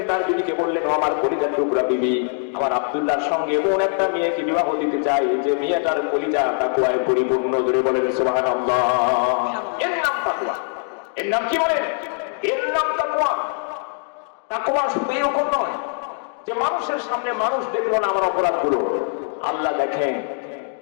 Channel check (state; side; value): silent; right; 56 dB below the other